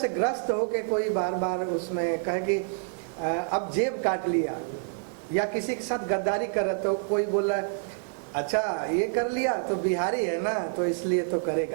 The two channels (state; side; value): silent; left; digital silence